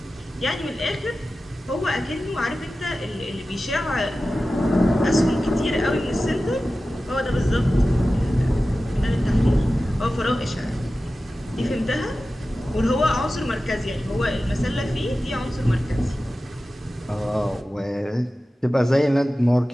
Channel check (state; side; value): normal; both; correlation 0.95